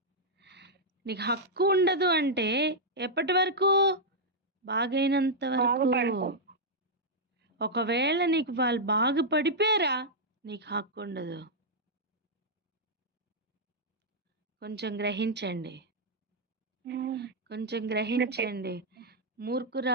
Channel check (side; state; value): both; normal; correlation -0.05